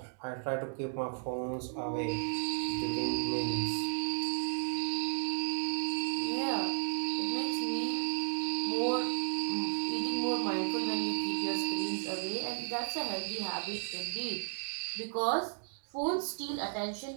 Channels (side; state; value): left; silent; digital silence